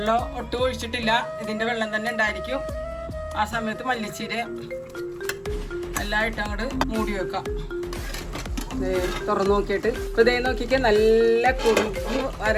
ഒട്ടും ഒഴിച്ചിട്ടില്ല, ഇതിൻ്റെ വെള്ളം തന്നെ ഉണ്ടായിരിക്കും. ആ സമയത്ത് മല്ലിച്ചീര എല്ലാം ഇട്ട് അങ്ങോട്ട് മൂടി വെക്കാം. തുറന്നു നോക്കിയിട്ട് ഇപ്പോൾ ഇതേ നോക്കിക്കാൻ നല്ല കുറുകി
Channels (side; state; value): both; identical; correlation 1.00